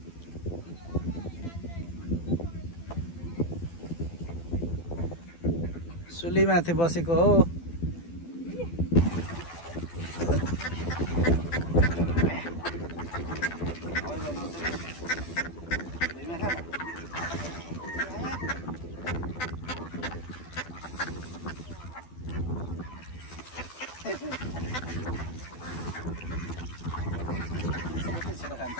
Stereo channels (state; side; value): late; right; 12 ms